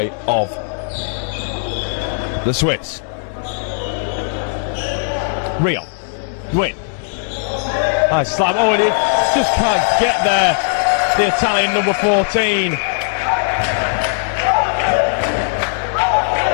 of the Swiss. Rio. Win. Nice slam. Oh, and he just can't get there. The Italian number 14.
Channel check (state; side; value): silent; right; digital silence